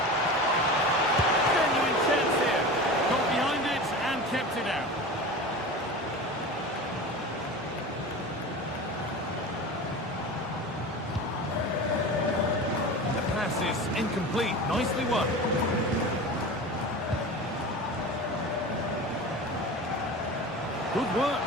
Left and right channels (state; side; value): normal; both; correlation 0.31